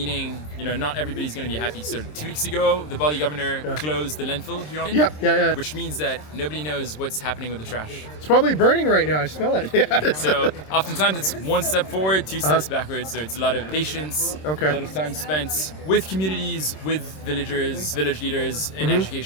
not everybody's going to be happy. So 2 weeks ago, the Bali governor closed the landfill here on it. Yeah. Which means that nobody knows what's happening with the trash. It's probably burning right now. I smell it. Yeah. So oftentimes it's 1 step forward, 2 steps backwards. So it's a lot of patience, a lot of time spent with communities, with villagers, village leaders, in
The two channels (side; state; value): right; late; 26 ms